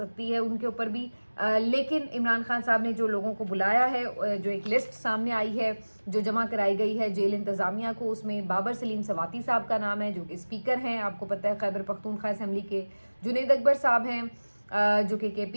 ہے, ان کے اوپر بھی. لیکن عمران خان صاحب نے جو لوگوں کو بلایا ہے, جو ایک لسٹ سامنے آئی ہے جو جمع کرائی گئی ہے جیل انتظامیہ کو, اس میں بابر سلیم سواتی صاحب کا نام ہے جو کہ اسپیکر ہیں, آپ کو پتہ ہے خیبر پختونخوا اسمبلی کے. جنید اکبر صاحب ہیں جو کہ کے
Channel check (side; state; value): both; inverted; correlation -1.00